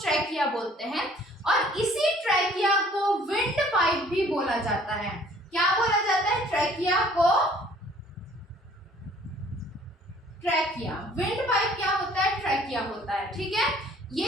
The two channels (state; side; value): normal; both; correlation 0.56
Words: ट्रैकिया बोलते हैं, और इसी ट्रैकिया को विंड पाइप भी बोला जाता है। क्या बोला जाता है, ट्रैकिया को ट्रैकिया। विंड पाइप क्या होता है, ट्रैकिया होता है। ठीक है, ये